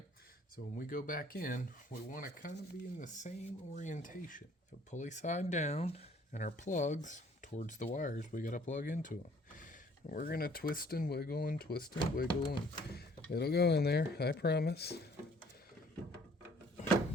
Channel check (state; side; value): normal; both; correlation 0.58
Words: So when we go back in, we want to kind of be in the same orientation. So pulley side down, and our plugs towards the wires we got to plug into them. And we're going to twist and wiggle and twist and wiggle, and it'll go in there, I promise.